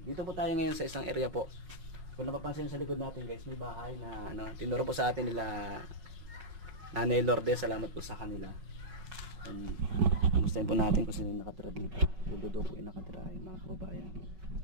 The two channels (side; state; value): left; late; 5.4 ms